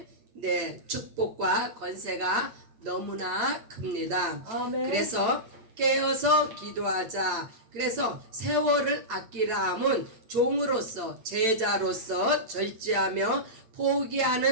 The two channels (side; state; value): left; late; 8.9 ms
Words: 축복과 권세가 너무나 큽니다. 아멘. 그래서 깨어서 기도하자. 그래서 세월을 아끼라 함은 종으로서 제자로서 절제하며